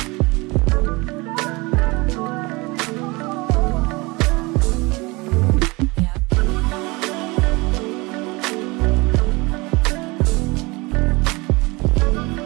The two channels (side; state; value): left; quieter; 24.6 dB